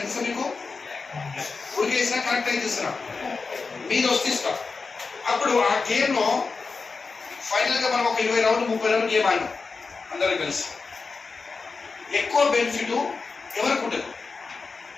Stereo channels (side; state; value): right; quieter; 4.5 dB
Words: ఎంత మీకు ఉడికేసినా కరెక్ట్ అయితే ఇస్తున్నా మీరు వస్తే ఇస్తాం. అప్పుడు ఆ గేమ్లో ఫైనల్గా మనం ఒక 20 రౌండ్ 30 రౌండ్ గేమ్ ఆడినాం అందరం కలిసి. ఎక్కువ బెనిఫిట్ ఎవరికి ఉంటుంది?